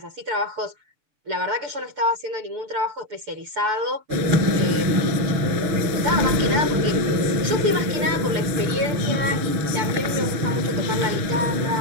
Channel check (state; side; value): late; left; 6.9 ms